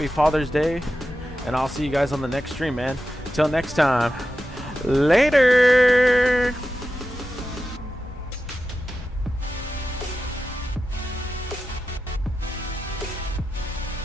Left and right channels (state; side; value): normal; both; correlation 0.91